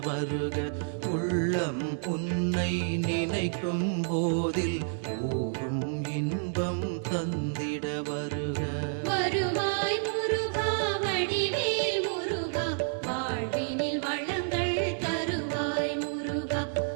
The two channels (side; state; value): left; silent; digital silence